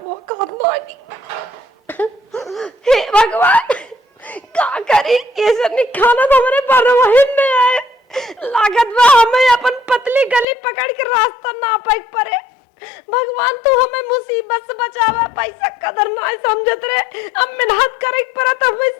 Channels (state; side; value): drops out; right; at 10.5 s